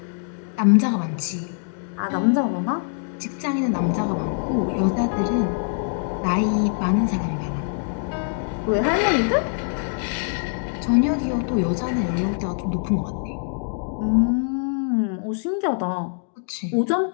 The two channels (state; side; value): silent; right; 61 dB below the other